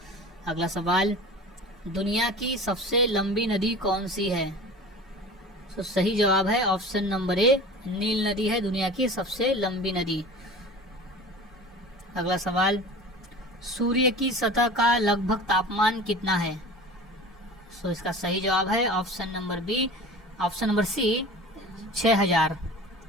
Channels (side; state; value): both; normal; correlation 0.38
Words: अगला सवाल, दुनिया की सबसे लंबी नदी कौन सी है? तो सही जवाब है ऑप्शन नंबर ए नील नदी है दुनिया की सबसे लंबी नदी। अगला सवाल, सूर्य की सतह का लगभग तापमान कितना है? सो इसका सही जवाब है option number C 6000।